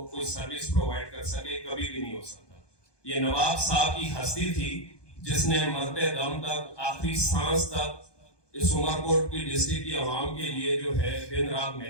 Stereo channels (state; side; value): late; right; 1.2 ms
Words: کوئی سروس پرووائڈ کر سکے؟ کبھی بھی نہیں ہو سکتا. یہ نواب صاحب کی ہستی تھی جس نے مرتے دم تک، آخری سانس تک اس عمر کوٹ کی ڈسٹرکٹ کی عوام کے لیے جو ہے دن رات